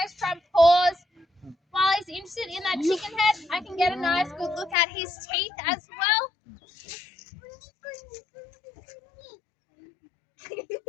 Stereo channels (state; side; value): drops out; right; at 4.8 s